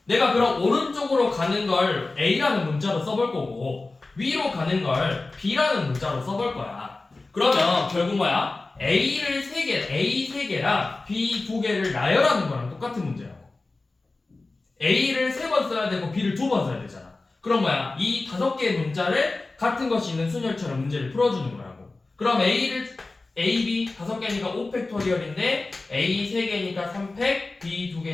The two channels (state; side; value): quieter; right; 3.4 dB